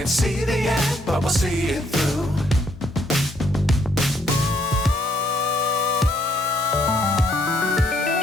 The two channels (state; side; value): normal; both; correlation 0.69